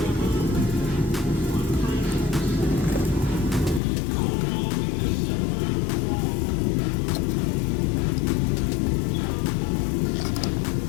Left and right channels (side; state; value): right; drops out; at 3.8 s